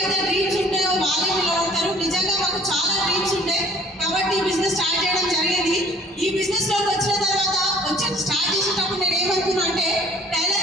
డ్రీమ్స్ ఉంటాయో వాళ్ళే నిలబడతారు. నిజంగా మాకు చాలా డ్రీమ్స్ ఉంటాయి కాబట్టి ఈ బిజినెస్ స్టార్ట్ చేయడం జరిగింది. ఈ బిజినెస్ లోకి వచ్చిన తర్వాత స్టార్ట్ చేసేటప్పుడు నేను ఏమనుకున్నా అంటే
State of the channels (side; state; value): both; normal; correlation 0.53